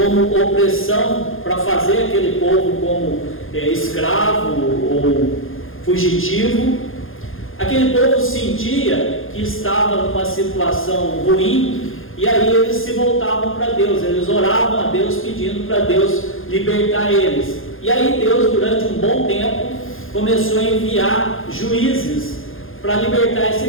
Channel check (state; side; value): late; right; 0.60 ms